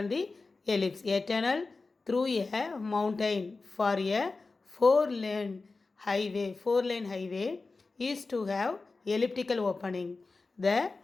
the ellipse. A tunnel through a mountain for a four-lane highway is to have elliptical opening. The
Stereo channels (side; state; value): right; quieter; 3.8 dB